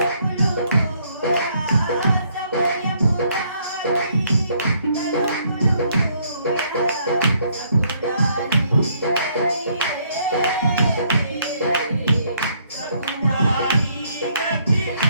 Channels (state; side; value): inverted; both; correlation -0.68